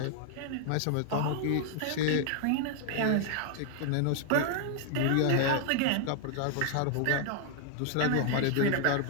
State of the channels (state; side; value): different; both; correlation 0.00